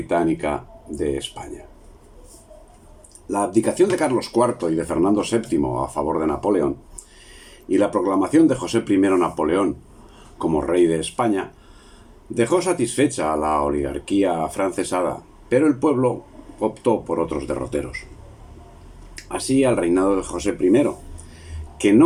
de España. La abdicación de Carlos IV y de Fernando VII a favor de Napoleón y la proclamación de José I Napoleón como rey de España dejó satisfecha a la oligarquía afrancesada, pero el pueblo optó por otros derroteros. Así, al reinado de José I, que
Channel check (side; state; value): both; identical; correlation 1.00